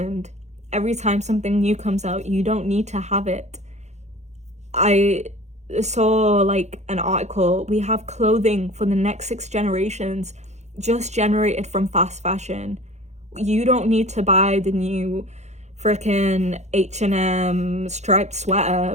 every time something new comes out. You don't need to have it. I saw like an article, we have clothing for the next 6 generations just generated from fast fashion. You don't need to buy the new freaking H&M striped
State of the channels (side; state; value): left; late; 0.33 ms